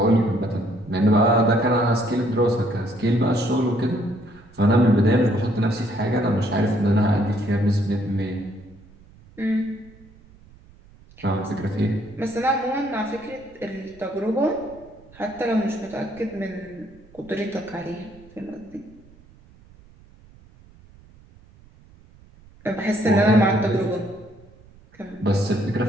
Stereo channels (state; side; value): noise; right; rumble, 25 dB below the sound